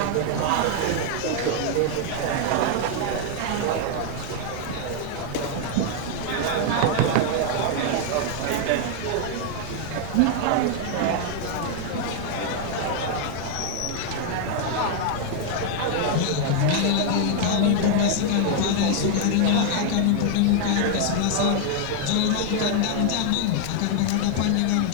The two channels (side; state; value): both; different; correlation 0.00